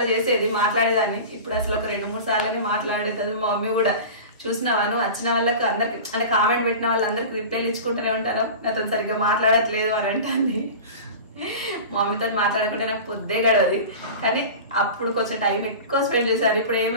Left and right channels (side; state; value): both; inverted; correlation -0.34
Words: చేసేది, మాట్లాడేదాన్ని. ఇప్పుడు అసలు ఒక 2-3 సార్లని మాట్లాడేది. మా మమ్మీ కూడా చూసినావా నువ్వు వచ్చిన వాళ్ళకి అందరికి, అంటే కామెంట్ పెట్టిన వాళ్ళందరికి రిప్లైలు ఇచ్చుకుంటూనే ఉంటాను, నాతో సరిగ్గా మాట్లాడట్లేదు అని అంటుంది. మా మమ్మీతో మాట్లాడకుండా నాకు పొద్దే గడవది. కానీ అప్పుడు కొంచెం టైం ఎక్కువ స్పెండ్ చేశారు. ఇప్పుడు